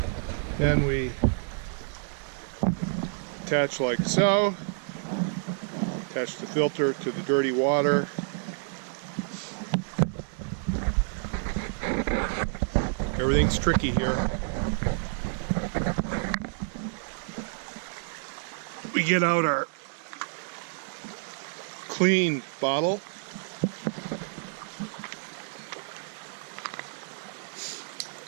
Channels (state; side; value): silent; left; digital silence